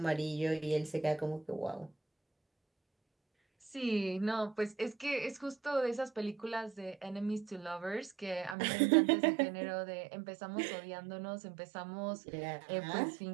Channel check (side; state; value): left; drops out; at 8.6 s